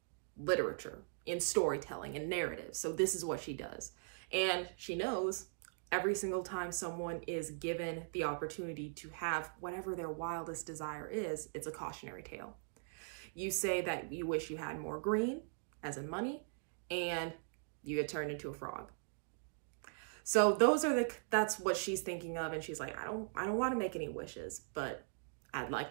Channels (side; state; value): left; silent; digital silence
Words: literature, in storytelling, and narrative. So this is what she does. And she knows every single time someone is given the opportunity to have whatever their wildest desire is, it's a cautionary tale. You say that you wish you had more green, as in money, and you get turned into a frog. So that's what she's thinking of. And she's like, I don't want to make any wishes, but I'd